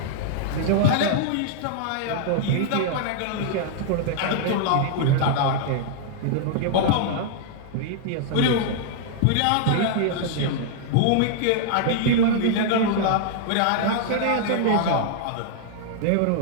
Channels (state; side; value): different; both; correlation -0.01